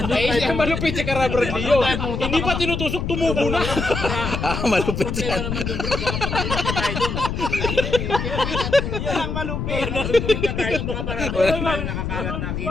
Eh, malupit si Carabrad Leo. Hindi pa tinutusok, tumubo na. Malupit Problema yan. naman doon bro, baka pagpunta pa tayo doon. Yan ang malupit. Pagpunta tayo, baka marami tayo nakakalat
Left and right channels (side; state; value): left; noise; rumble, 3 dB below the sound